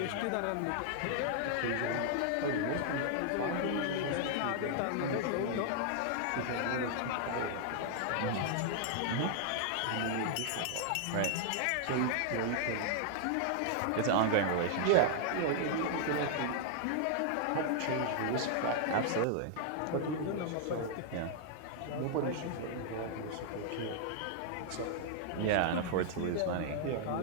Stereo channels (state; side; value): different; both; correlation -0.01